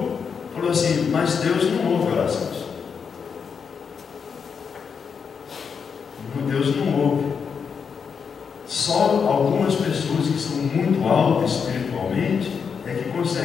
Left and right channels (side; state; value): right; quieter; 6.3 dB